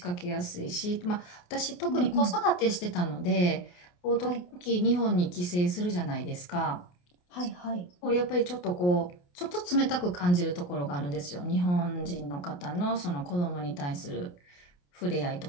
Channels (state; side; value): late; right; 28 ms